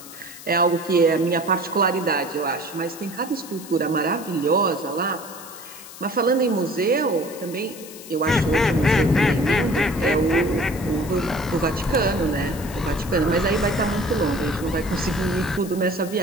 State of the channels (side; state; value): left; noise; hiss, 16 dB below the sound